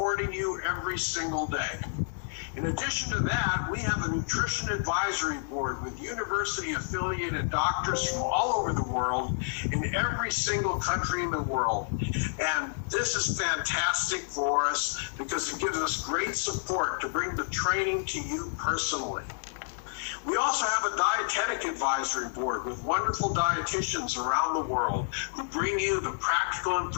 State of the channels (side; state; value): right; silent; digital silence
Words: you every single day. In addition to that, we have a nutrition advisory board with university-affiliated doctors from all over the world in every single country in the world. And this is fantastic for us because it gives us great support to bring the training to you personally. We also have a dietetic advisory board with wonderful dietitians around the world who bring you the practical